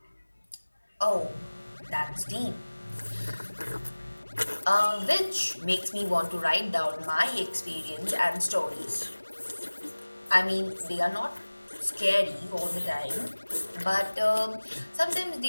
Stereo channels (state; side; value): inverted; both; correlation -1.00